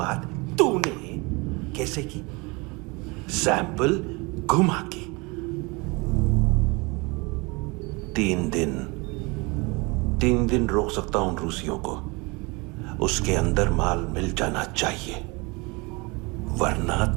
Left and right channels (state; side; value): quieter; left; 26.7 dB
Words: तूने कैसे की? सैंपल घुमा के। 3 दिन रोक सकता हूं रूसियों को, उसके अंदर माल मिल जाना चाहिए, वरना